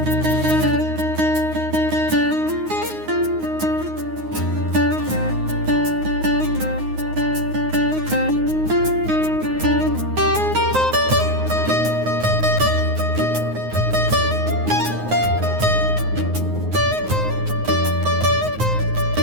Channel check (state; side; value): late; left; 9.5 ms